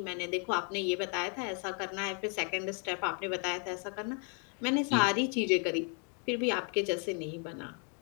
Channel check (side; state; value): right; quieter; 39.2 dB